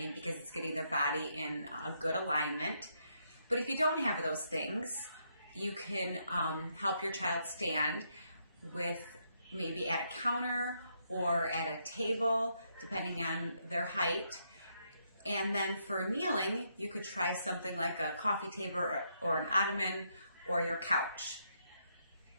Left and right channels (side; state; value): both; inverted; correlation -0.77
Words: because it's getting their body in a good alignment. But if you don't have those things, you can help your child stand with maybe at a counter or at a table, depending on their height. And then for kneeling, you could try something like a coffee table or an ottoman or your couch.